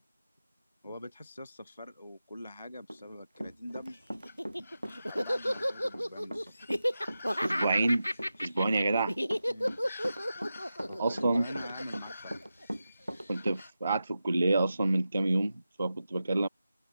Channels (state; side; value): inverted; both; correlation -0.92